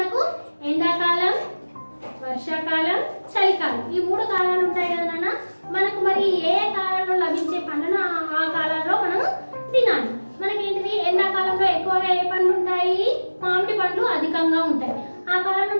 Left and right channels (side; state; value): both; inverted; correlation -1.00